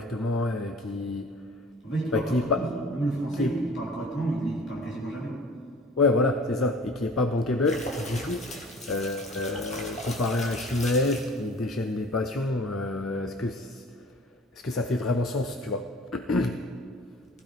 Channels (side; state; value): both; normal; correlation 0.46